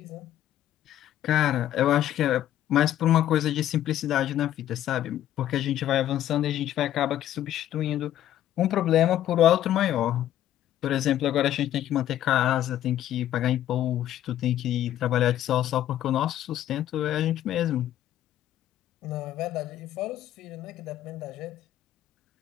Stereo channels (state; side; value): quieter; right; 12.2 dB